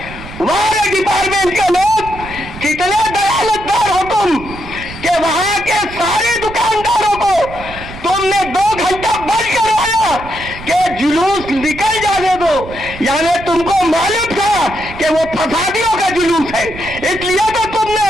हमारे डिपार्टमेंट के लोग कितने दयालतदार हो तुम कि वहां के सारे दुकानदारों को तुमने 2 घंटा बंद करवाया कि जुलूस निकल जाने दो। यानी तुमको मालूम था कि वो फसादियों का जुलूस है, इसलिए तो तुमने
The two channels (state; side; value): noise; right; rumble, 14 dB below the sound